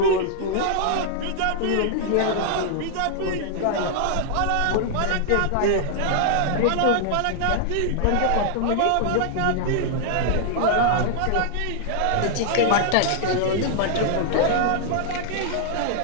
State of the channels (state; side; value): different; both; correlation -0.01